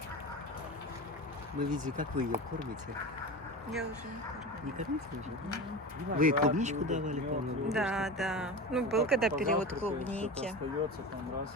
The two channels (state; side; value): normal; both; correlation 0.28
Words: Мы видели, как вы ее кормите. Я уже не кормлю. Не кормите уже? Вы ей клубничку давали, по-моему? Да, да. Ну, был когда период клубники. Остается, там, раз,